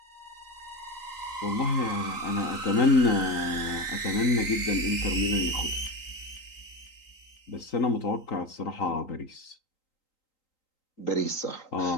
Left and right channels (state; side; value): late; right; 3.8 ms